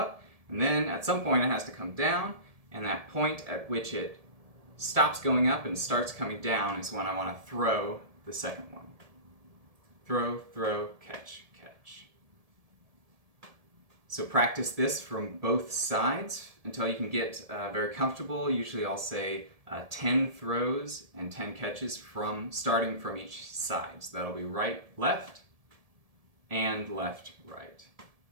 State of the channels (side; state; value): left; late; 1.7 ms